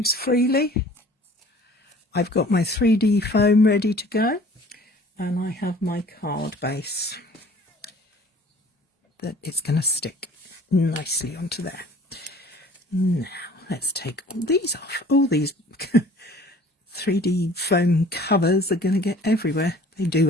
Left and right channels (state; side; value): normal; both; correlation 0.50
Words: freely. I've got my 3D foam ready to go, and I have my card base that is going to stick nicely onto there. Now let's take all these off. All these 3D foam covers are going to get everywhere. They